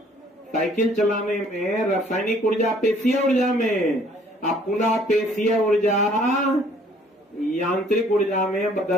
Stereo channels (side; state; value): both; normal; correlation 0.59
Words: साइकिल चलाने में रासायनिक ऊर्जा पेशीय ऊर्जा में, अब पुनः पेशीय ऊर्जा यांत्रिक ऊर्जा में